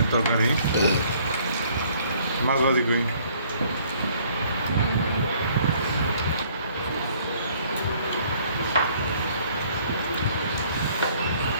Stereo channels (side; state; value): both; inverted; correlation -0.60